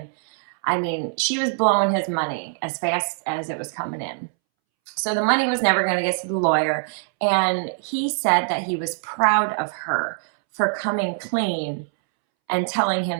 I mean, she was blowing his money as fast as it was coming in. So the money was never going to get to the lawyer. And he said that he was proud of her for coming clean and telling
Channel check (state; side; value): silent; left; 63 dB below the other